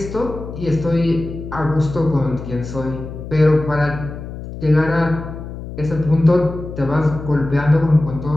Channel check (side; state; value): left; noise; hum, 10 dB below the sound